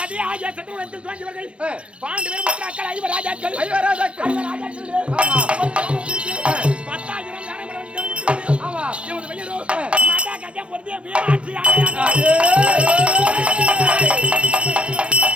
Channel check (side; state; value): left; late; 0.059 ms